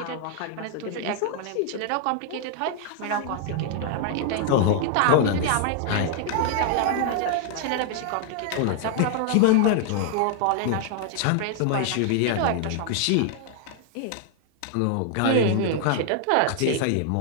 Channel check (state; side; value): different; both; correlation 0.00